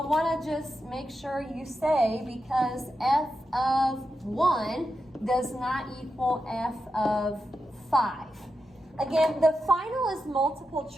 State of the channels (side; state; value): both; normal; correlation 0.88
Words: want to just make sure you say because f of 1 does not equal f of 5. Again, the final is multiple